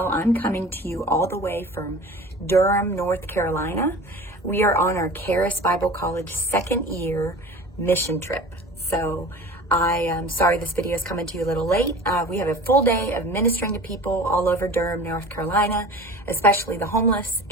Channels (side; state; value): both; normal; correlation 0.38